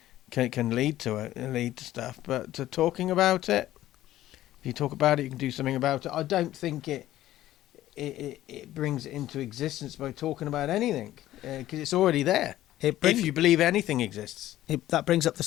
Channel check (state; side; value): quieter; right; 14.2 dB